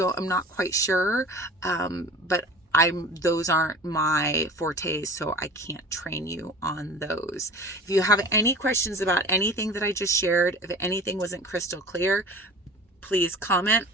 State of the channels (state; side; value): normal; both; correlation 0.40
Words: not quite sure. But those aren't my fortes, so I can't train you on those. If you have any questions about anything that I just shared, if anything wasn't crystal clear, please comment.